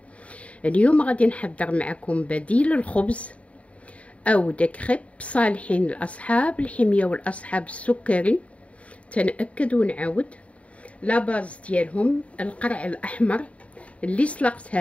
اليوم غادي نحضر معكم بديل الخبز او دكريب صالحين الاصحاب الحميه والاصحاب السكري. تنأكد ونعاود لا باز ديالهم القرع الاحمر اللي سلقتها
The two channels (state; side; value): late; right; 0.065 ms